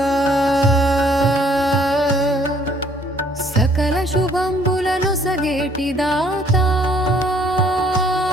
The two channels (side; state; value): both; normal; correlation 0.61